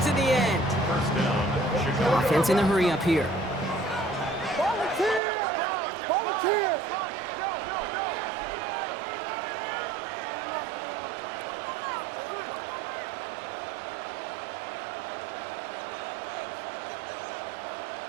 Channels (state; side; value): drops out; left; at 5.2 s